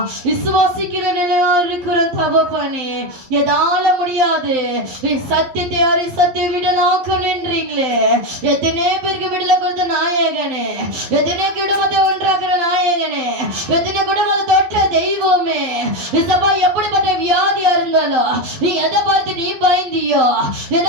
விசுவாசிக்கிற நிலையா இருக்கிறோம் தகப்பனே. எதால முடியாது சத்தியத்தை யாரை சத்திய விடலாக்க நின்றீங்களே. எத்தனை பேருக்கு விடல கொடுத்த நாயகனே, எத்தனை குடும்பத்தை ஒன்றாக்குற நாயகனே, எத்தனை குடும்பத்தை தொட்ட தெய்வமே. இசப்பா எப்படிப்பட்ட வியாதியா இருந்தாலும் நீ எதை பார்த்து நீ பயந்தியோ,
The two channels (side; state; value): left; late; 12 ms